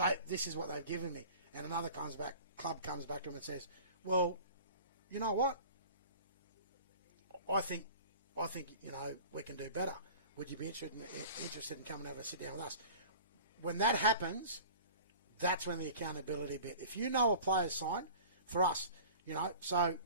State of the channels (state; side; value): inverted; both; correlation -0.42